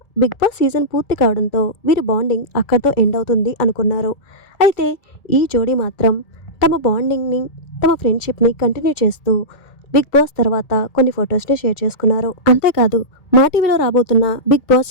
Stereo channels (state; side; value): late; right; 2.3 ms